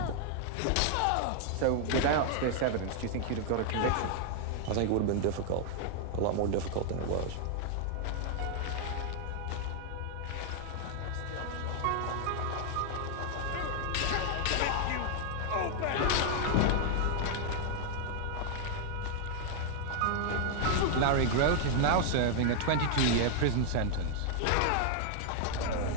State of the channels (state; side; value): different; both; correlation 0.00